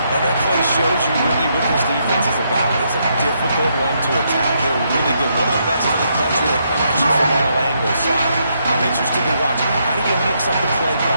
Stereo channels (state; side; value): inverted; both; correlation -0.76